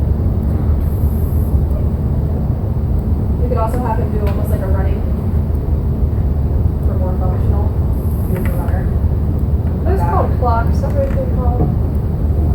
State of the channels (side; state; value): both; identical; correlation 1.00